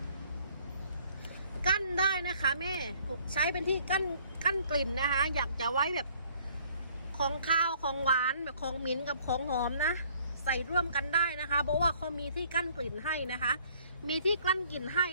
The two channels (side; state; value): both; inverted; correlation -0.59